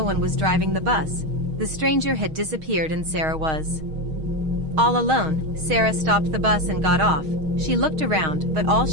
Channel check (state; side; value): late; left; 6.4 ms